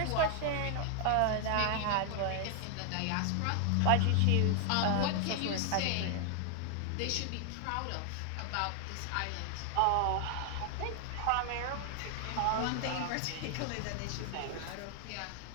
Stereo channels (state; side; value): different; both; correlation 0.00